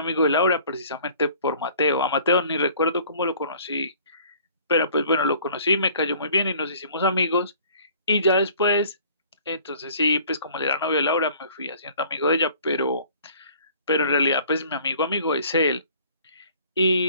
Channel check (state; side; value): inverted; both; correlation -0.53